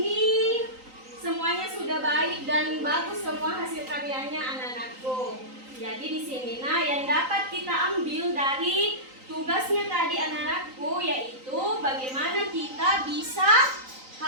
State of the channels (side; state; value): left; late; 3.9 ms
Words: semuanya sudah baik dan bagus semua hasil karyanya anak-anakku. Jadi di sini yang dapat kita ambil dari tugasnya tadi anak-anakku yaitu bagaimana kita bisa